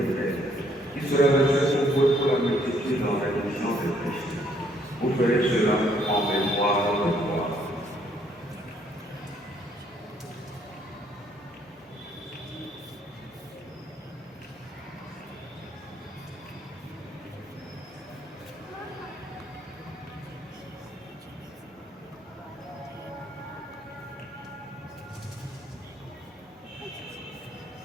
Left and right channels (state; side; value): normal; both; correlation 0.67